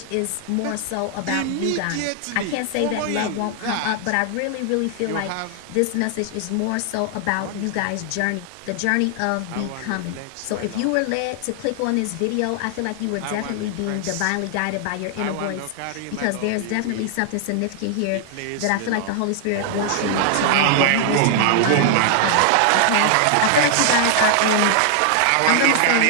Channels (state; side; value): different; both; correlation 0.00